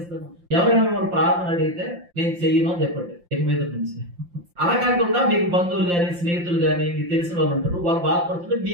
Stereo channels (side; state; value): left; late; 5.7 ms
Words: ఎవరైనా మిమ్మల్ని ప్రార్థన అడిగితే నేను చెయ్యను అని చెప్పండి ఇక మీద నుంచి. అలా కాకుండా మీకు బంధువులు గాని, స్నేహితులు గాని, మీకు తెలిసిన వాళ్ళు ఉంటారు, వాళ్ళు బాధపడుతుంటే